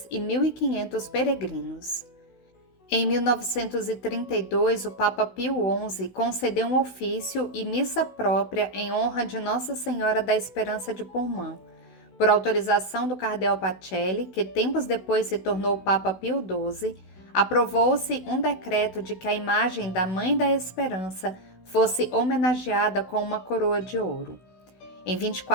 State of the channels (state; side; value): late; right; 16 ms